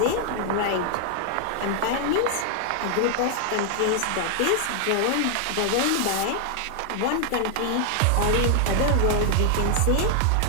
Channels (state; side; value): different; both; correlation 0.00